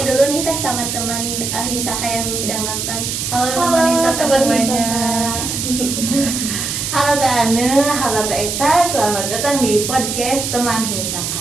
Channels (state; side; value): noise; right; hiss, 3 dB below the sound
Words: dulu nih Teh sama teman Himsaka yang sedang nonton. Halo teman Himsaka semuanya. Halo Teh Ane, halo Teh Eka, selamat datang di podcast teman